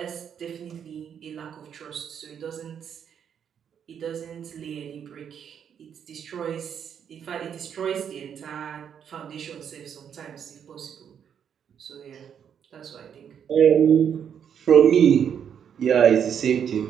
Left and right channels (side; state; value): left; quieter; 8.2 dB